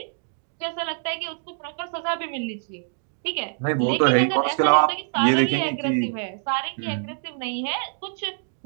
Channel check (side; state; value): left; silent; 61 dB below the other